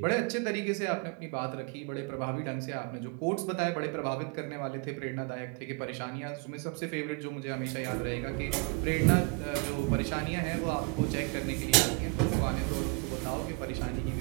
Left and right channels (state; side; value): quieter; left; 29.0 dB